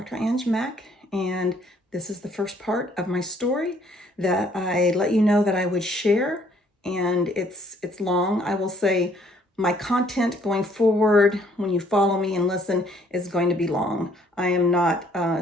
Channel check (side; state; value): both; normal; correlation 0.63